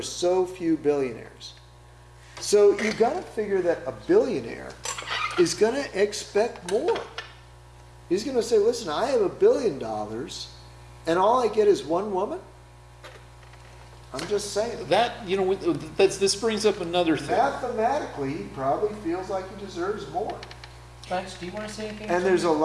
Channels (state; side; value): identical; both; correlation 1.00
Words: so few billionaires. So you got to figure that a billionaire is going to expect more. He's going to say, listen, I have $1 billion and all I get is one woman? I'm just saying. That, this brings up another thing. Mathematically, he probably feels like he deserves more. Lance, do you want to say anything? And there's a